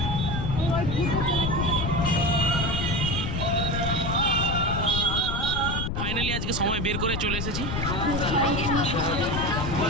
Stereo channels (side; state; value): left; noise; rumble, 2 dB below the sound